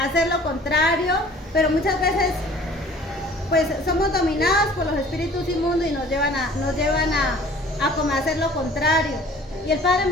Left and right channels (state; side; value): normal; both; correlation 0.50